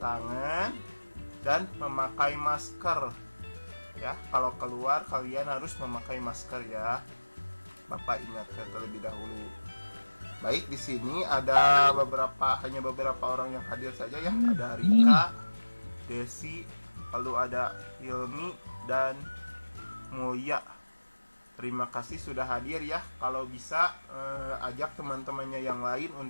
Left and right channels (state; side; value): inverted; both; correlation -1.00